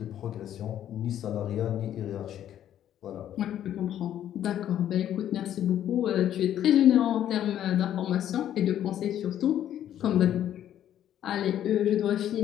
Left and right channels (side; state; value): right; quieter; 11.0 dB